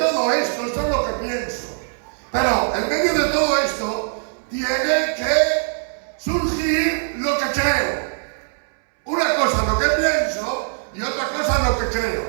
esto es lo que pienso, pero en medio de todo esto tiene que surgir lo que creo. Una cosa es lo que pienso y otra cosa es lo que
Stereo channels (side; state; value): left; silent; 65 dB below the other